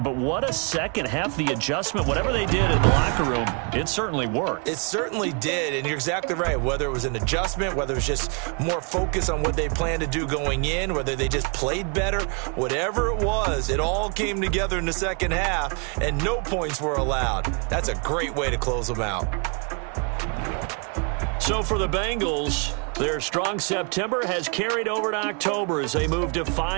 but what a second half. The adjustment, whatever they did in the locker room, it certainly worked. It certainly did, and you're exactly right. Whether it was an adjustment, whether it was just more focus on what they planned to do going in, whether they just played better, whatever it was, it all came together in the second half, and no points were allowed. That's a great way to close them out. So for the Bengals, their strong September has carried over to October as they move to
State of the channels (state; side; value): quieter; left; 36.0 dB